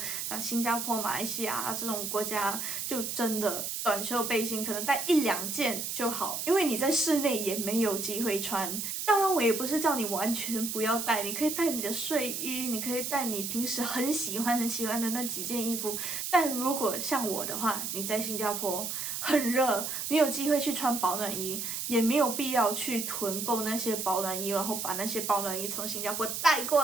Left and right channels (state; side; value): noise; right; hiss, 4 dB below the sound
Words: 新加坡、马来西亚这种国家，就真的短袖背心可能带1-2件就好，因为你在室内也没有机会穿。当然我也不是叫你完全不要带，你可以带你的睡衣，你可以带你平时很喜欢的那几件衣服。但如果像我的话，你在新加坡很热，你有机会去穿保暖衣，也没有必要去囤购那些保暖衣，然后把那些保暖衣从新加坡带过